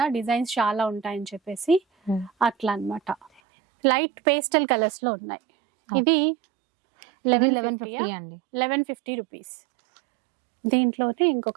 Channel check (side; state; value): left; drops out; at 3.4 s